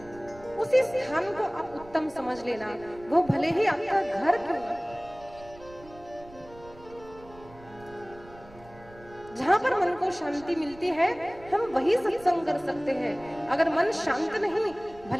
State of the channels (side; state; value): right; noise; rumble, 21 dB below the sound